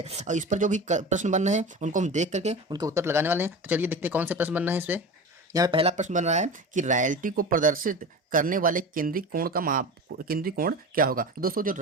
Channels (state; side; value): normal; both; correlation 0.30